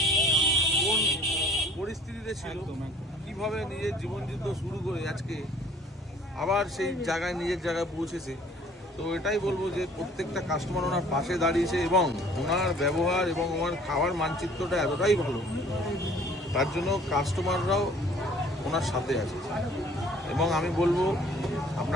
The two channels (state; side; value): normal; both; correlation 0.54